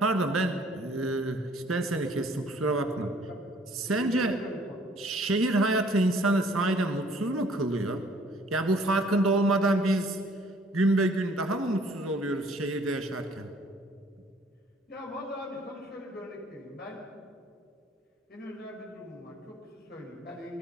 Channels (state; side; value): normal; both; correlation 0.58